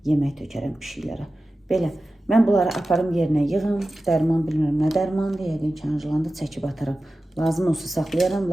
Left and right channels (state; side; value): normal; both; correlation 0.94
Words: yemək tökərəm pişiklərə. Belə. Mən bunları aparım yerinə yığım. Dərman bilmirəm nə dərmandır. Yəqin ki, Anjlanda çəkib ataram. Lazım olsa saxlayaram,